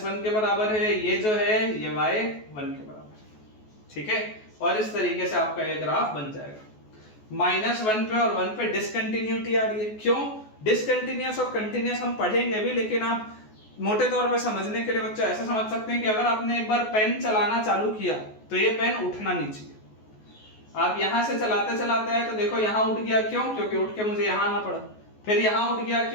के बराबर है, ये जो है ये y 1 के बराबर है। ठीक है, और इस तरीके से आपका ये ग्राफ बन जाएगा। -1 पे और 1 पे डिसकंटिन्यूटी आ रही है। क्यों डिसकंटिन्यूअस और कंटिन्यूअस हम पढ़ेंगे भी, लेकिन आप मोटे तौर पे समझने के लिए बच्चा ऐसा समझ सकते हैं कि अगर आपने एक बार पेन चलाना चालू किया तो ये पेन उठना नहीं चाहिए। आप यहां से चलाते चलाते आए तो देखो यहां उठ गया, क्यों, क्योंकि उठ के मुझे यहां आना पड़ा। फिर यहां उठ गया,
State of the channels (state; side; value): late; right; 14 ms